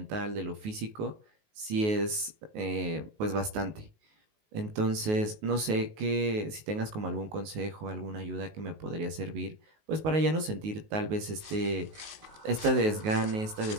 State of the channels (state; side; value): late; left; 19 ms